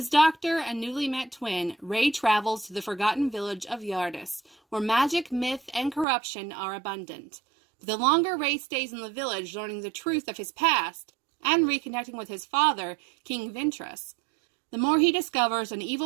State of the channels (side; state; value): left; drops out; at 6.1 s